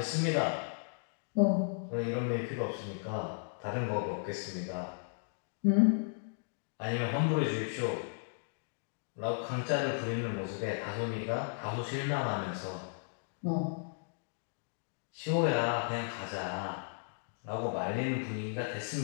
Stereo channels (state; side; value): silent; right; digital silence